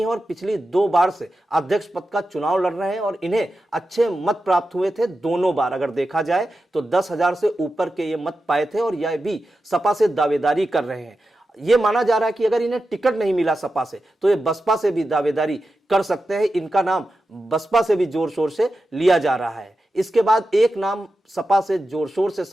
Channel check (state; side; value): normal; both; correlation 0.91